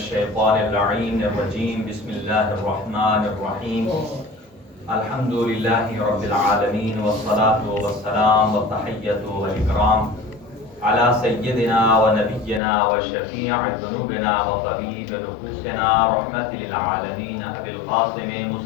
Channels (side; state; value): right; drops out; at 12.6 s